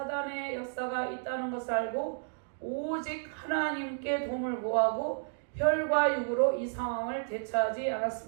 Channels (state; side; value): silent; left; digital silence